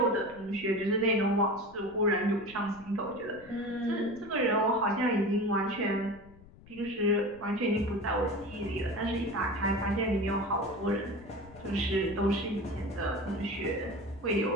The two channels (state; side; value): noise; left; rumble, 22 dB below the sound